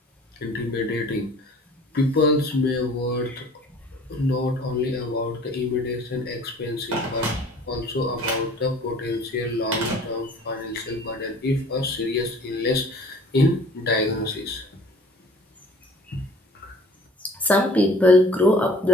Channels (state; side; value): normal; both; correlation 0.50